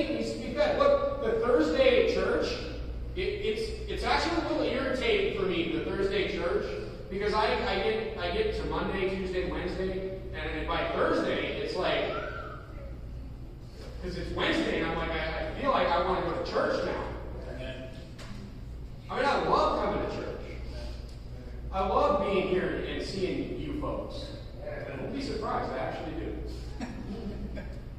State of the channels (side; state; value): both; identical; correlation 1.00